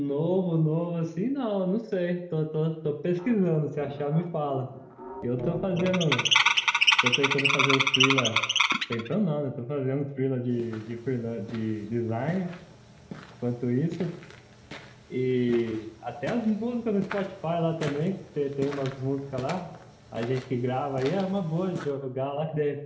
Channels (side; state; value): both; identical; correlation 1.00